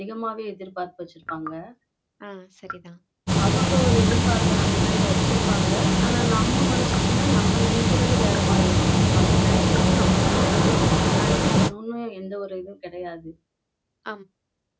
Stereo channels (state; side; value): identical; both; correlation 1.00